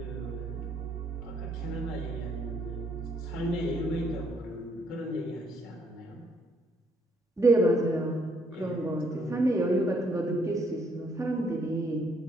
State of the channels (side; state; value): both; normal; correlation 0.69